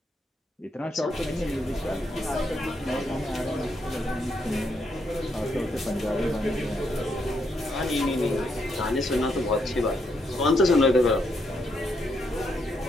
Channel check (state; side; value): normal; both; correlation 0.77